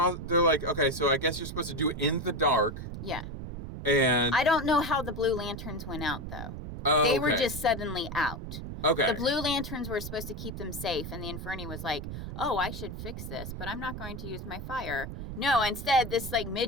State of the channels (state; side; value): noise; right; rumble, 8 dB below the sound